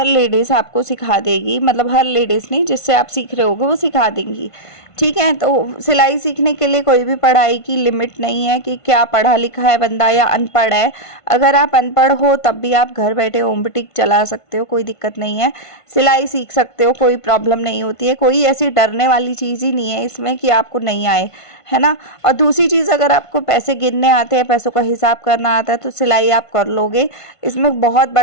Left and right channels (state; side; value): late; right; 1.5 ms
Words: लेडीज आपको सिखा देगी, मतलब हर लेडीज नहीं, जिससे आप सीख रहे होगे वो सिखा देंगी। ठीक है, तो सिलाई सीखने के लिए कोई भी पढ़ाई की लिमिट नहीं है कि क्या पढ़ा लिखा है बंदा या अनपढ़ है। अगर आप अनपढ़ हो तब भी आप घर बैठे होम बुटीक चला सकते हो, कोई दिक्कत नहीं है। सिलाई सीख सकते हो, कोई प्रॉब्लम नहीं होती है। कोई ऐसी डरने वाली चीज़ ही नहीं है इसमें कि आपको नहीं आए, है ना। और दूसरी चीज़, अगर आपको पैसे गिनने आते हैं, पैसों का हिसाब करना आता है, तो सिलाई आप कर लोगे। इसमें बहुत